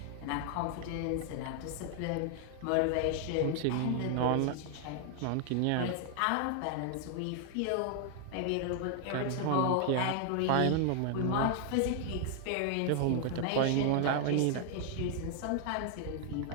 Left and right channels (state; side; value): different; both; correlation 0.00